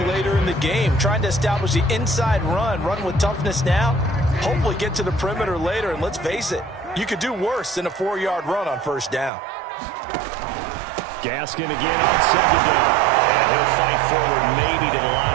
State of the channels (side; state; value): left; drops out; at 9.3 s